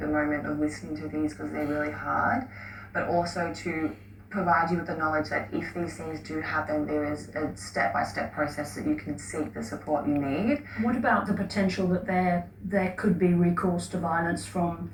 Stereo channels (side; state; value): both; identical; correlation 1.00